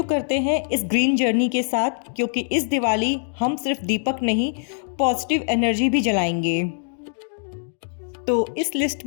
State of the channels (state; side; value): silent; right; digital silence